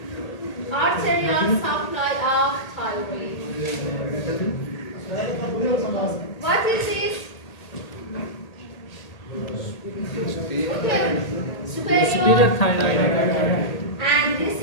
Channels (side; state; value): right; late; 1.8 ms